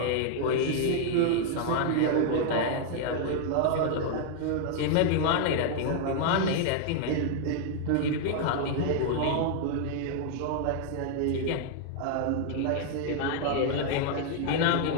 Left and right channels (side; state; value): both; different; correlation 0.00